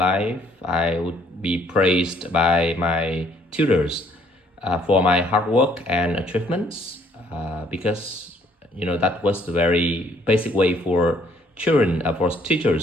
I would be praised by my tutors for my hard work and achievements because that was the very basic way for children, for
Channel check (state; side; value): normal; both; correlation 0.63